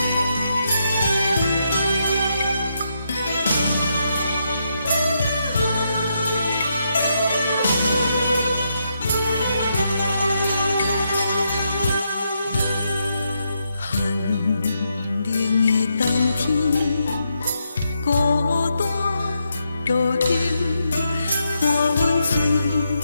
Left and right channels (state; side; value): inverted; both; correlation -0.81